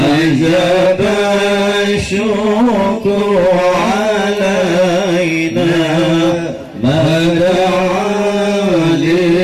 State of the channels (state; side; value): identical; both; correlation 1.00